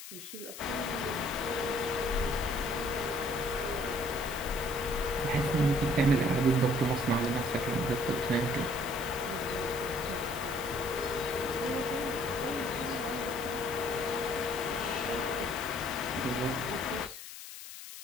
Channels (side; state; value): left; noise; hiss, 12 dB below the sound